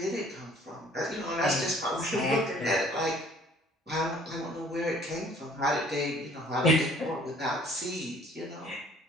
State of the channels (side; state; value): both; normal; correlation 0.56